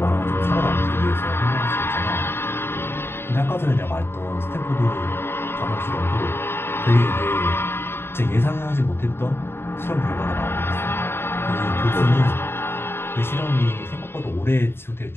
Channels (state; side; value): late; right; 0.11 ms